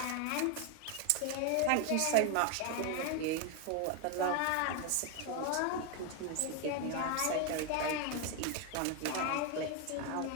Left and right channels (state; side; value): different; both; correlation 0.01